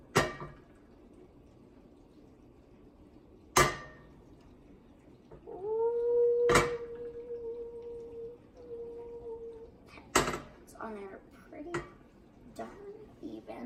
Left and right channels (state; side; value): identical; both; correlation 1.00